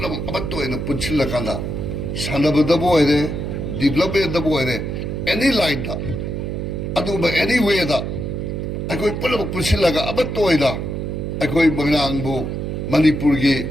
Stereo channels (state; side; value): noise; right; hum, 3 dB below the sound